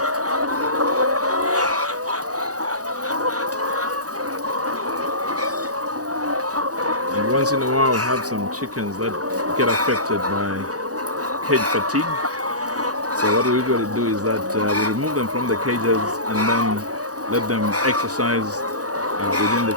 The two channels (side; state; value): left; late; 0.67 ms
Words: And once in a while, we have some chickens that get affected by cage fatigue. So So what we usually do is that we remove them from the cages and then let them exercise within the